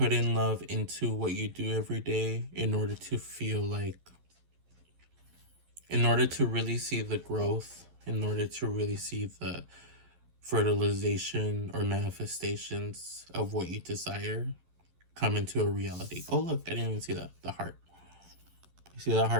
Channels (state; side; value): late; left; 11 ms